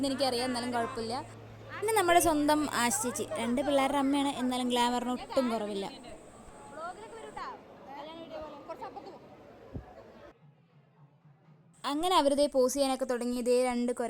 എനിക്കറിയാം, എന്നാലും കുഴപ്പമില്ല. പിന്നെ നമ്മുടെ സ്വന്തം ആശ് ചേച്ചി, 2 പിള്ളേരുടെ അമ്മയാണ്, എന്നാലും ഗ്ലാമറിന് ഒട്ടും കുറവില്ല. അങ്ങനെ അവരിതേ പോസ് ചെയ്യാനൊക്കെ തുടങ്ങി. ഇതേ 2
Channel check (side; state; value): both; identical; correlation 1.00